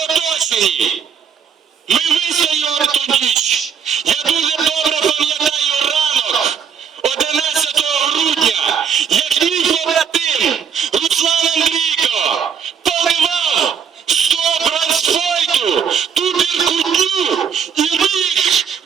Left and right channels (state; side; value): quieter; left; 7.2 dB